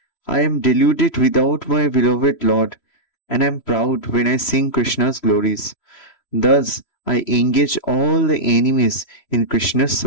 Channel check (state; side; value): late; right; 3.0 ms